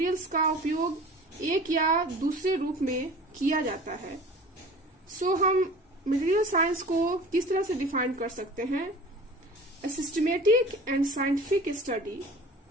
का उपयोग एक या दूसरे रूप में किया जाता है। हम मटेरियल साइंस को किस तरह से डिफाइन कर सकते हैं? A systematic and scientific study,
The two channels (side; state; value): both; normal; correlation 0.42